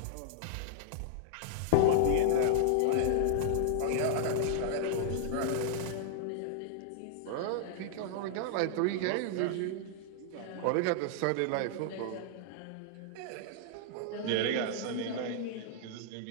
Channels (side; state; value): both; different; correlation -0.01